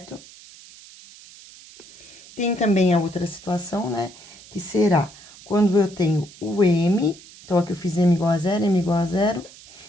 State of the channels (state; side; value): noise; right; hiss, 21 dB below the sound